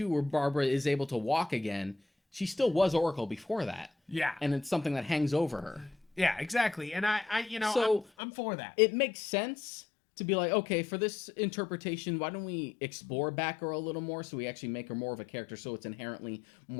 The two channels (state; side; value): drops out; right; at 8.1 s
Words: where Barbara is able to walk again, she still was Oracle before that. Yeah. And it's something that hangs over her. Yeah, exactly. And I'm for that. It makes sense to be okay, for this interpretation, why don't we explore Batgirl a little more so we actually make her more of a character so it's inherently